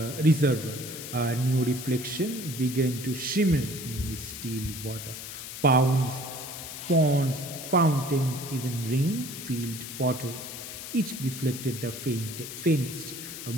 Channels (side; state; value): left; noise; hiss, 9 dB below the sound